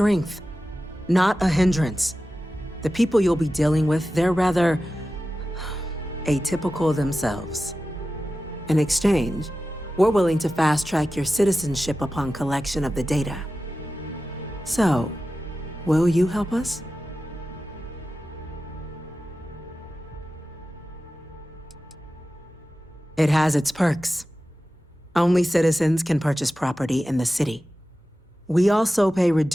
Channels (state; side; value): normal; both; correlation 0.94